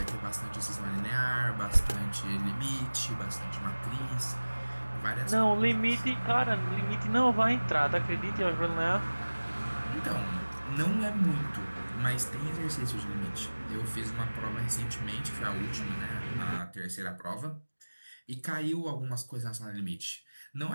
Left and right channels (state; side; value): inverted; both; correlation -1.00